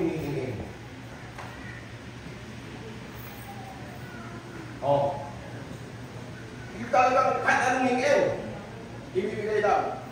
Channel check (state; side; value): identical; both; correlation 1.00